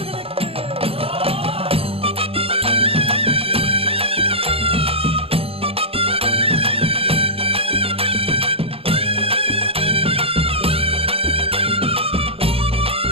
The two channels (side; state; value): left; late; 0.28 ms